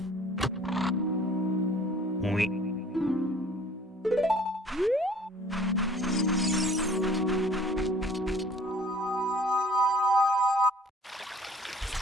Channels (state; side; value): normal; both; correlation 0.52